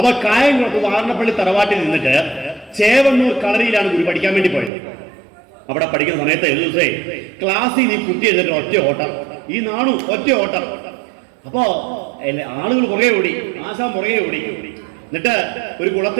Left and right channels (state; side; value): drops out; left; at 4.7 s